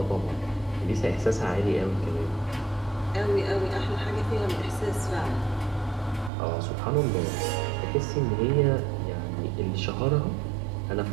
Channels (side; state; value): left; drops out; at 6.3 s